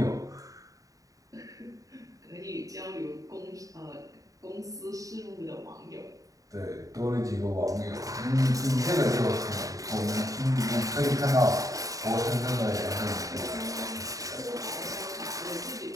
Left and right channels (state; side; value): late; left; 0.16 ms